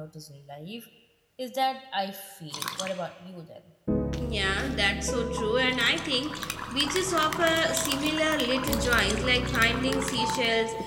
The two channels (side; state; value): both; identical; correlation 1.00